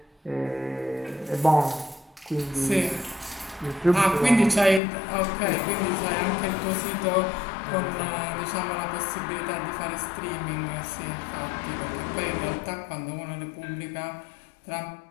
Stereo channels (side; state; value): right; drops out; at 4.8 s